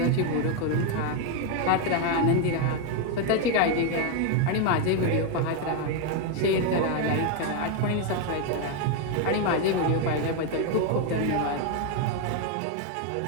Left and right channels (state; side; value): different; both; correlation 0.01